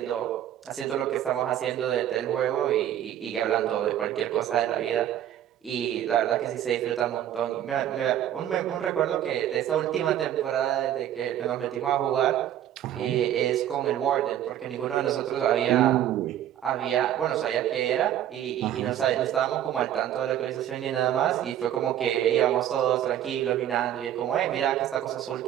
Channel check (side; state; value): left; quieter; 11.3 dB